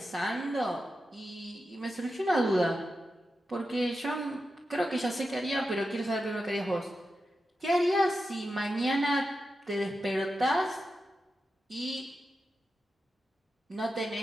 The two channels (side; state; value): both; normal; correlation 0.90